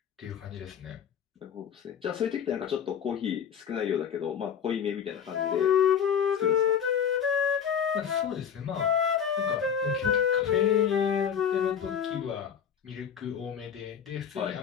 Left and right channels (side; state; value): right; quieter; 7.9 dB